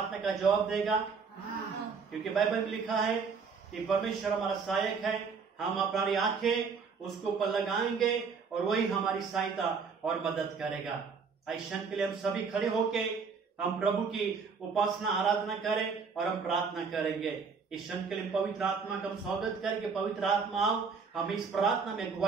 का जवाब देगा? क्योंकि बाइबल में लिखा है कि परमेश्वर हमारा सहायक है, हम अपनी आंखें उसके ऊपर लगाएंगे और वही हमारी सहायता और मदद करेगा। ऐसा के लिए हम सभी खड़े होके हम प्रभु की उपासना आराधना करें और हम प्रार्थना करेंगे। इस क्षण के लिए पवित्र आत्मा का हम स्वागत करके, पवित्र आत्मा आओ, हमें इस प्रार्थना में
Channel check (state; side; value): quieter; left; 5.4 dB